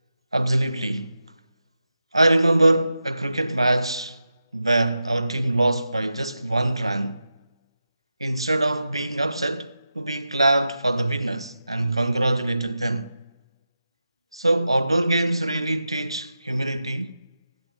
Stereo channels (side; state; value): both; inverted; correlation -0.90